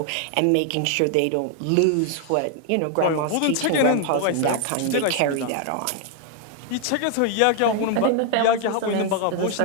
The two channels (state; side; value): different; both; correlation 0.00